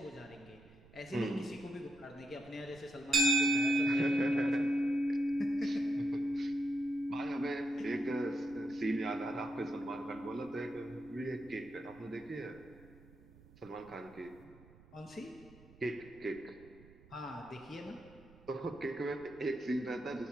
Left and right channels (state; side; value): noise; right; rumble, 23 dB below the sound